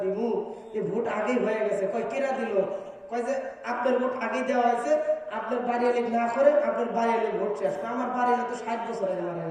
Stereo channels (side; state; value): both; identical; correlation 1.00